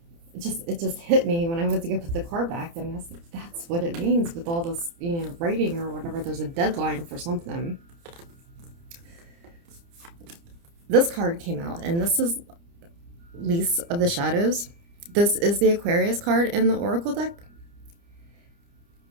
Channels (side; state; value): left; late; 30 ms